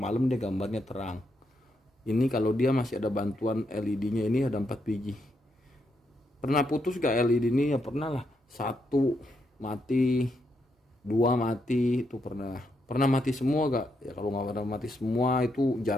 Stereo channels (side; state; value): both; normal; correlation 0.80